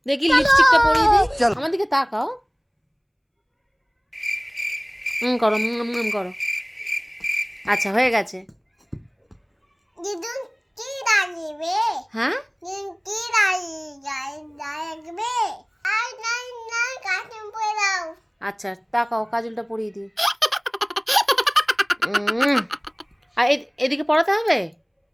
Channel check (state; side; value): identical; both; correlation 1.00